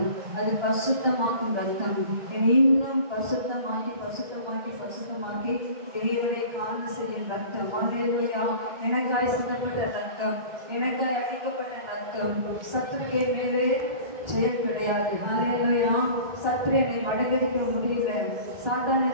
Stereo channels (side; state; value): left; late; 1.3 ms